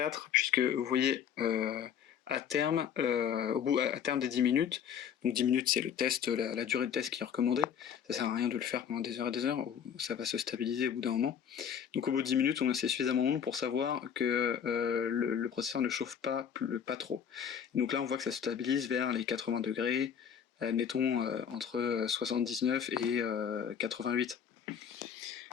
puisque vous voyez à terme des 10 minutes, donc 10 minutes c'est le test, la durée de test qui est recommandée, ça sert à rien de le faire pendant des heures et des heures, ça va se stabiliser au bout d'un moment. Donc au bout de 10 minutes, on a suffisamment long pour savoir que le processeur ne chauffe pas trop. Donc là on voit que ça se stabilise vers les 80 degrés, admettons entre 79 et 88.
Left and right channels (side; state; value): right; quieter; 8.2 dB